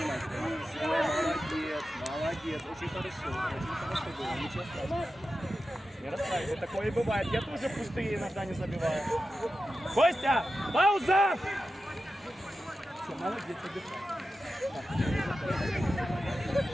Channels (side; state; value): both; normal; correlation 0.92